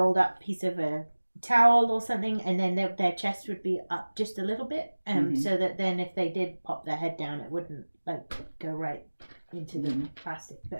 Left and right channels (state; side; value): inverted; both; correlation -1.00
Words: up piece of a towel or something, and then their chest would be up just a little bit, so that then if they did pop their head down, it wouldn't like go right into the plastic.